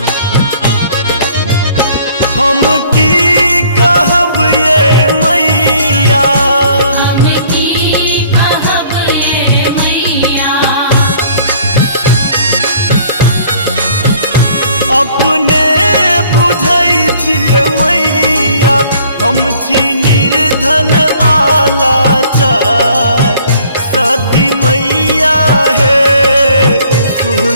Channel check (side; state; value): both; inverted; correlation -0.57